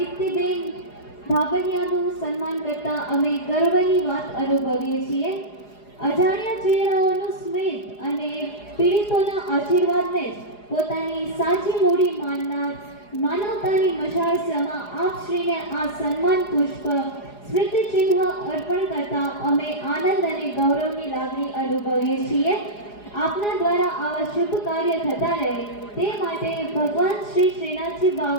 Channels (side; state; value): right; late; 4.8 ms